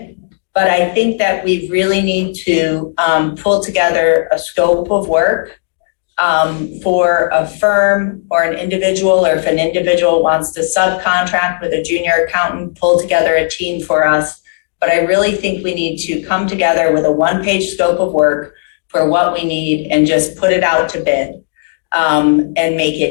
But I think that we really need to pull together a scope of work for a firm or an individual, or if an individual wants to subcontract with a junior accountant, pull together a team for us. But I really think we need to come together with a one-page scope of work for what we need and just put it out to bid and make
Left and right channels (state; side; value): silent; right; digital silence